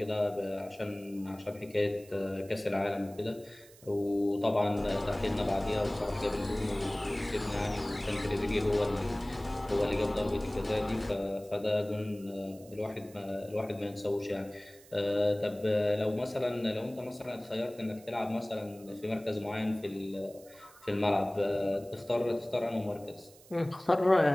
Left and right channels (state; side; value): noise; right; hiss, 23 dB below the sound